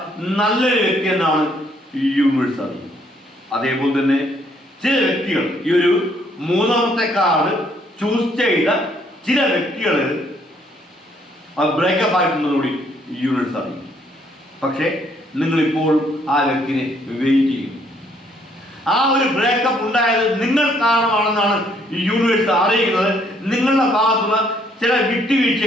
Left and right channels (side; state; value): both; normal; correlation 0.67